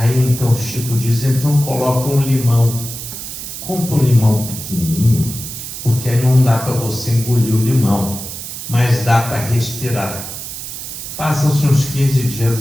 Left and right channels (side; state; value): right; noise; hiss, 9 dB below the sound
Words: então o Chico diz: então coloca um limão. Compra um limão pequenininho, porque aí não dá para você engolir o limão, mas dá para respirar. Passam-se uns 15 dias,